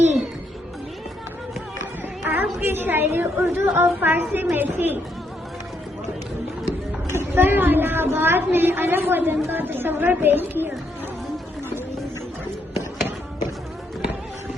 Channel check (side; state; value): both; normal; correlation 0.75